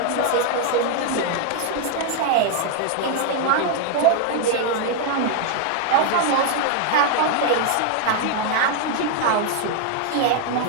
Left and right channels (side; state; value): both; different; correlation 0.00